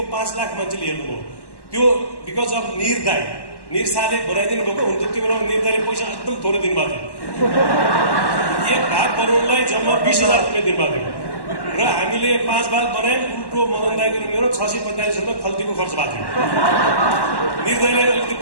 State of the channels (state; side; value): late; right; 1.1 ms